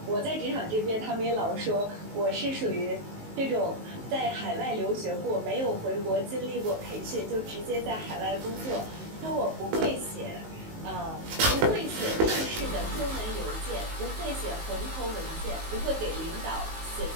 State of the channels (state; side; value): late; left; 19 ms